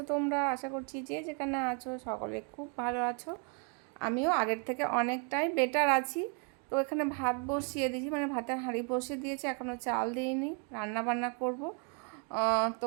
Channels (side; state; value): left; quieter; 35.6 dB